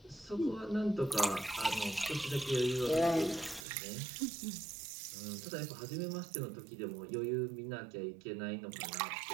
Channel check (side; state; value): left; drops out; at 3.7 s